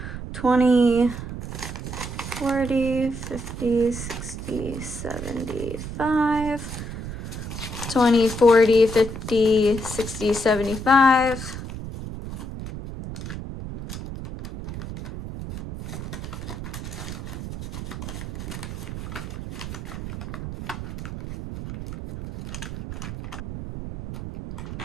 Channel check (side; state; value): right; noise; rumble, 8 dB below the sound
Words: 20, 40, 50, 60, 75. 20, 40, 50, 60, 75.